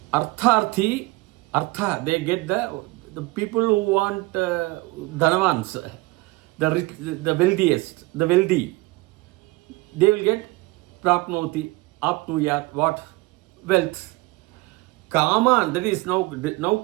artharthi, they get the people who want dhanavans, the rich, the wealthiest, the wealthy, they will get prapnoti, apnuyat, what? Wealth. Kaman, that is now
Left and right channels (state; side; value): quieter; left; 22.3 dB